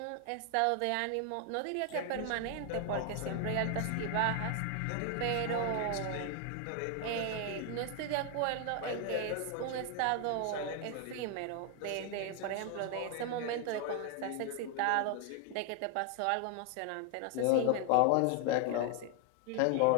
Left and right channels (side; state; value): both; different; correlation 0.00